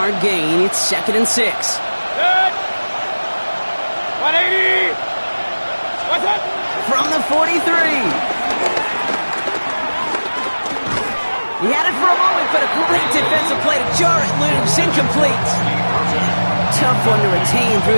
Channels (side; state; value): both; inverted; correlation -1.00